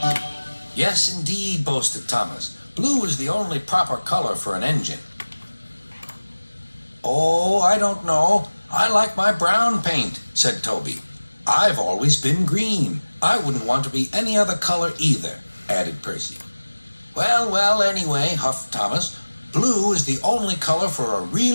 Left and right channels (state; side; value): inverted; both; correlation -1.00